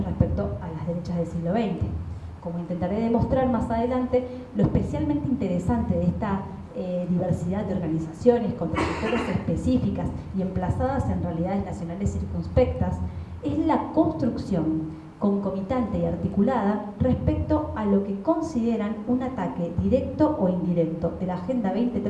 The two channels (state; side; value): identical; both; correlation 1.00